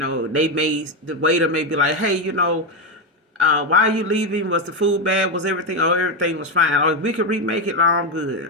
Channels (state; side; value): normal; both; correlation 0.09